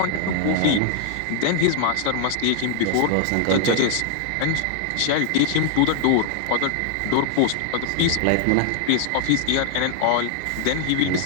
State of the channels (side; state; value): both; different; correlation 0.00